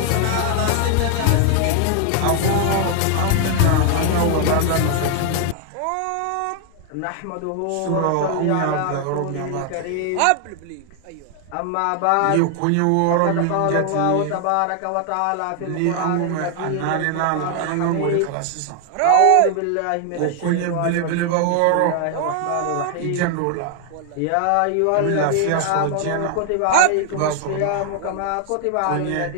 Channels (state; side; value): different; both; correlation 0.00